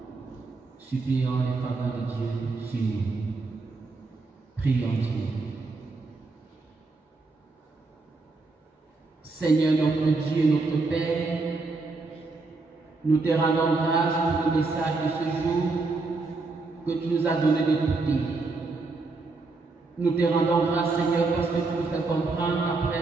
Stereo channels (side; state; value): left; quieter; 3.7 dB